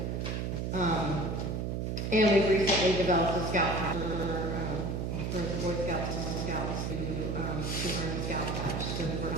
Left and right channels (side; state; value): right; noise; hum, 1 dB below the sound